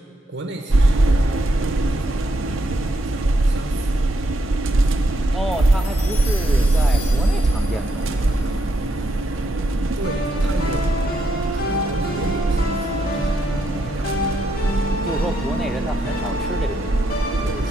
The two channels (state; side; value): normal; both; correlation 0.78